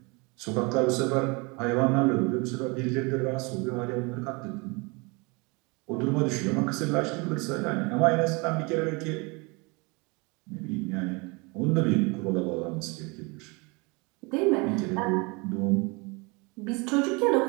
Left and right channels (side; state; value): left; quieter; 28.3 dB